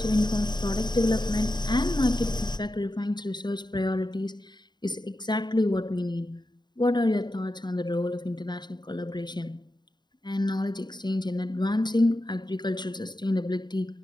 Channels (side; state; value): right; late; 0.21 ms